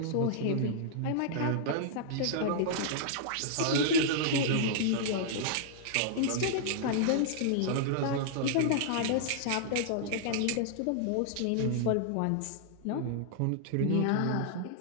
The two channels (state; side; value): different; both; correlation -0.01